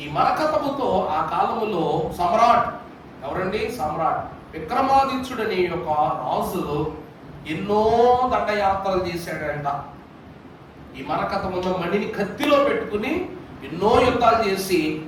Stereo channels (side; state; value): both; identical; correlation 1.00